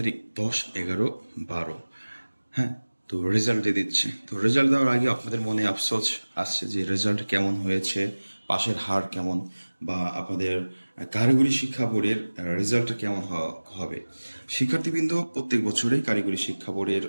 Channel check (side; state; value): both; inverted; correlation -1.00